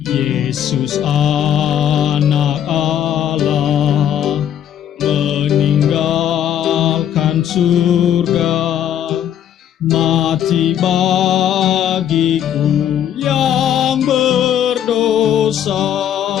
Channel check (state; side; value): quieter; right; 10.1 dB